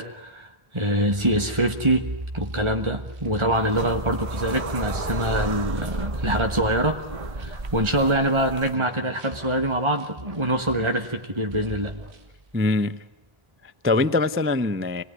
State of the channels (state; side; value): late; left; 1.4 ms